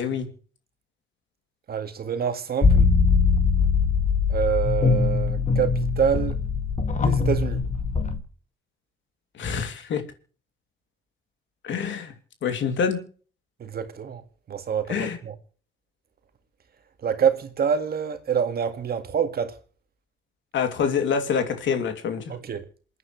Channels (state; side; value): normal; both; correlation 0.39